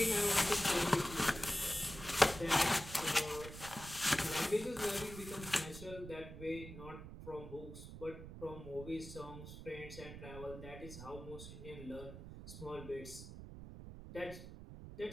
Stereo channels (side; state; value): right; noise; rumble, 12 dB below the sound